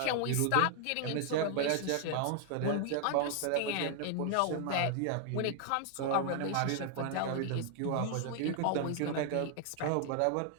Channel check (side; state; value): both; different; correlation 0.00